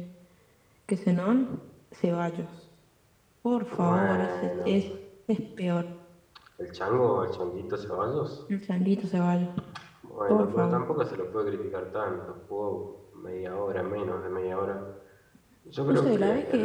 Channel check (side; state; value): both; identical; correlation 1.00